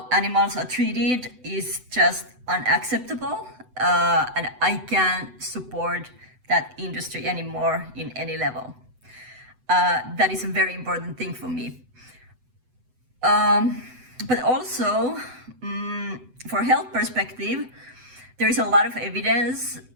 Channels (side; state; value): left; late; 7.9 ms